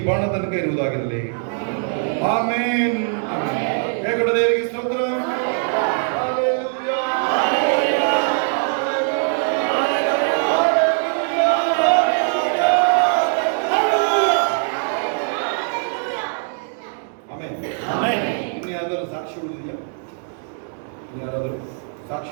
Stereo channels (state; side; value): silent; left; 60 dB below the other